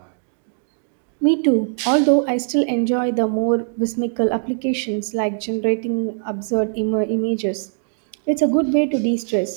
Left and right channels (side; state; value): left; silent; digital silence